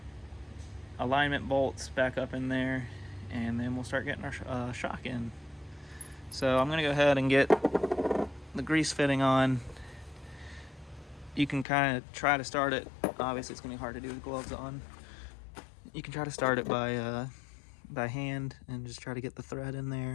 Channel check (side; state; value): right; drops out; at 11.7 s